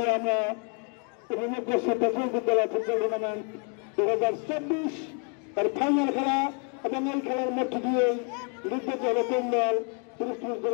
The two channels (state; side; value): quieter; right; 39.4 dB